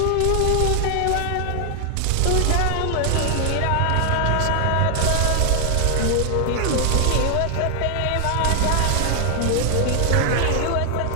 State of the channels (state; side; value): different; both; correlation 0.00